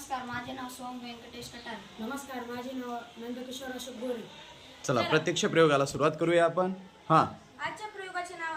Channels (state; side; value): identical; both; correlation 1.00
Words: माझे नाव सोम व्यंकटेश कटार. नमस्कार, माझे नाव नंदकिशोर अशोक गोरे. चला प्रत्यक्ष प्रयोगाला सुरुवात करूया आपण. आजच्या प्रयोगाचे नाव